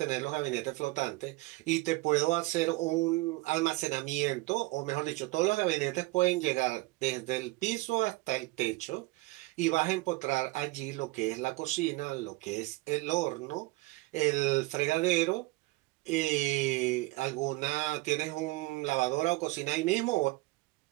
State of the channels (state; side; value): quieter; left; 21.6 dB